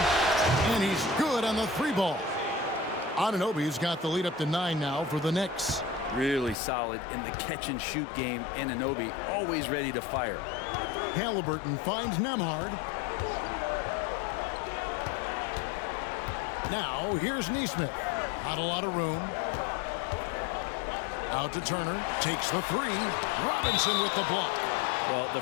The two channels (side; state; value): right; drops out; at 6.6 s